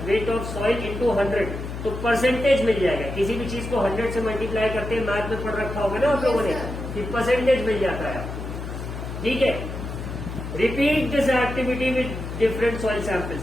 weight of soil into 100, तो परसेंटेज मिल जाएगा। किसी भी चीज को 100 से मल्टीप्लाई करते हैं, मैथ में पढ़ रखा होगा ना आप लोगों ने कि परसेंटेज मिल जाता है, ठीक है। Repeat this activity with different soil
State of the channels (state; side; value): noise; left; hum, 7 dB below the sound